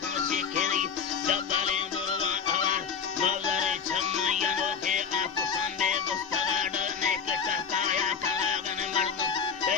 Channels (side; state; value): right; quieter; 6.5 dB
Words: Posikiri, Zabale, Burva, Malare Chamayano ke Apusande Bustagada Nekataya Kalagan Mardu